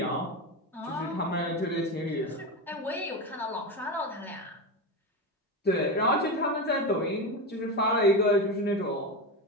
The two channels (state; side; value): normal; both; correlation 0.18